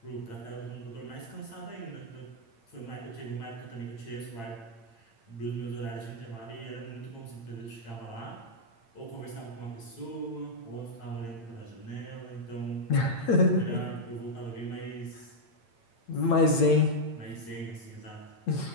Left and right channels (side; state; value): right; late; 8.8 ms